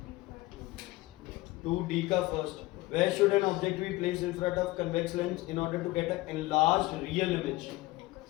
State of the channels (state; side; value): quieter; right; 19.6 dB